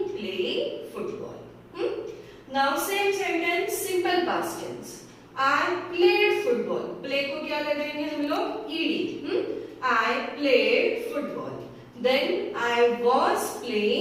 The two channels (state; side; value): identical; both; correlation 1.00